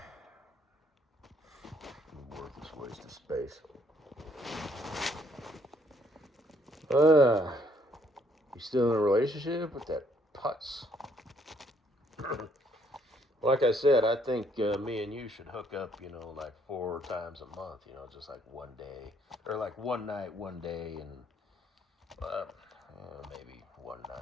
Worthless waste of space. You still in a relationship with that putz? Like I said, I think me and you should hook up, you know, like 4 times a month, you know, just like one day. Or like one night, one day, and maybe one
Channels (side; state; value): both; normal; correlation 0.67